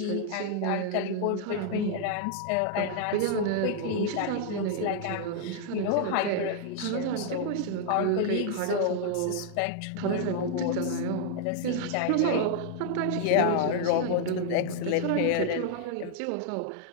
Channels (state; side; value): different; both; correlation 0.00